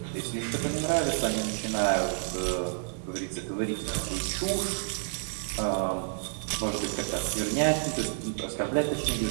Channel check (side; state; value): left; silent; 58 dB below the other